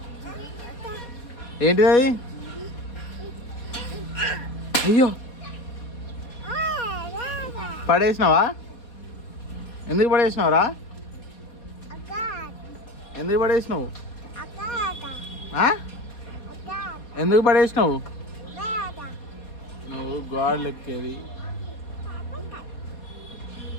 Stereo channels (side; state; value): right; late; 4.2 ms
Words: ఏంటిది అది? అయ్యో పడేసినావా? ఎందుకు పడేసినావురా? ఎందుకు పడేసినావు? ఎందుకు పడేసినావు? నువ్వు గాడ్ ఎక్కేది.